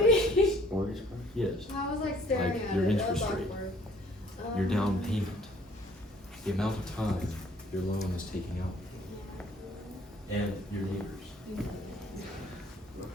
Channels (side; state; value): both; normal; correlation 0.58